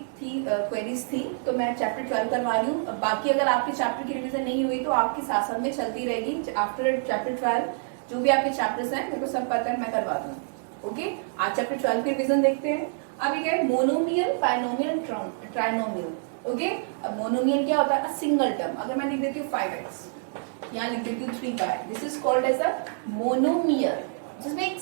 थी क्वेरीज थी, तो मैं चैप्टर 12 करवा रही हूँ। बाकी अगर आपके चैप्टर की रिविजन नहीं हुई तो आपके साथ साथ में चलती रहेगी। आफ्टर चैप्टर 12 जो भी आपके चैप्टर्स हैं मेरे को सब पता है, मैं करवा दूँ। ओके, आज चैप्टर 12 की रिविजन देखते हैं। अभी क्या है, मोनोमियल, बायनोमियल, ट्राइनोमियल। ओके, अब मोनोमियल क्या होता है? A single term. अगर मैं लिख देती हूँ 5x, यहाँ लिख देती हूँ 3y, this is called as a monomial, जिसमें एक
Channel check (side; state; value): left; silent; digital silence